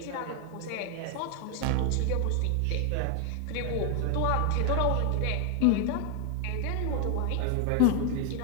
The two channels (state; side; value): different; both; correlation 0.00